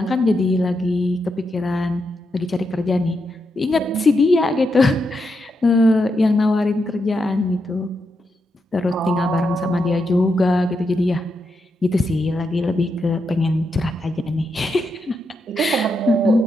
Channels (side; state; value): both; normal; correlation 0.84